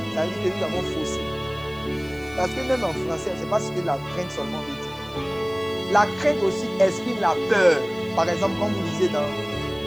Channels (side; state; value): left; noise; hiss, 26 dB below the sound